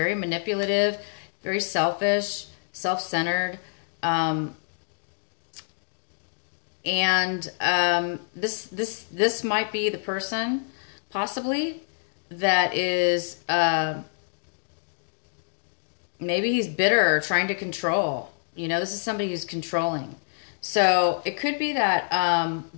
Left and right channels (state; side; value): silent; right; digital silence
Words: manipulative, very selfish, self-centered, this might be the person, possibly, that is maybe he's bitter or trying to control. You know, this is somebody who's controlling. So it could be that